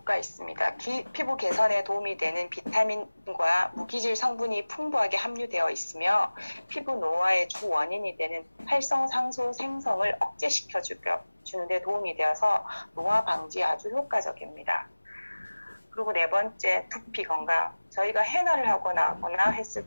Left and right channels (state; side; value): inverted; both; correlation -1.00